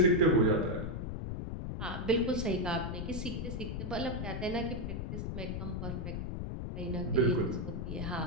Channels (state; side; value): noise; left; rumble, 4 dB below the sound